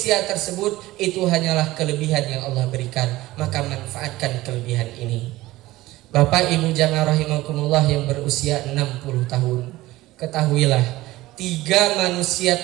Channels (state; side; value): quieter; left; 17.7 dB